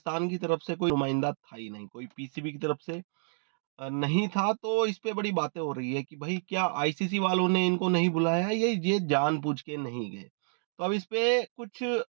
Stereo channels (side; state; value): left; silent; digital silence